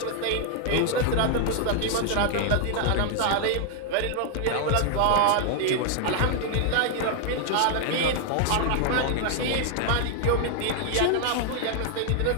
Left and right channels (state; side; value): different; both; correlation 0.00